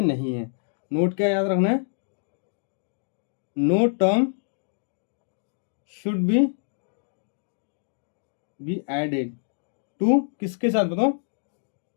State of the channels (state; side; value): silent; right; digital silence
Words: नहीं है। नोट क्या याद रखना है, no term should be added to, किसके साथ बताओ